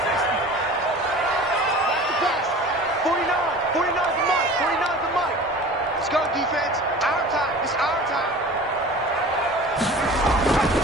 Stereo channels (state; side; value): normal; both; correlation 0.40